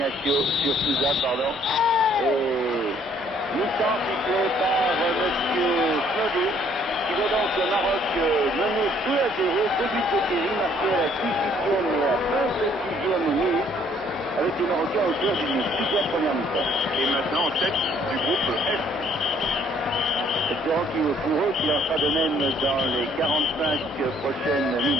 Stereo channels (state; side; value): normal; both; correlation 0.63